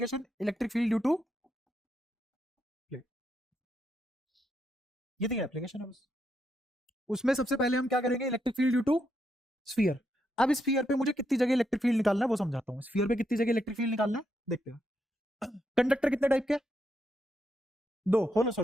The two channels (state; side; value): normal; both; correlation 0.80